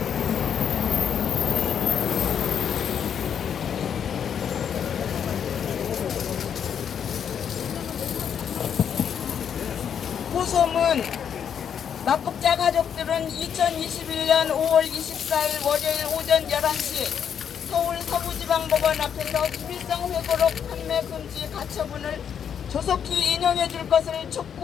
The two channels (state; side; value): quieter; right; 8.1 dB